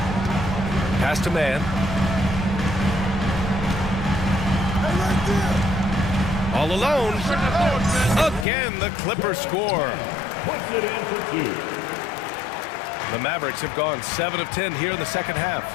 Pass to Man. All alone. Again, the Clippers score. The Mavericks have gone 7 of 10 here in the second half.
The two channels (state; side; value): drops out; right; at 8.5 s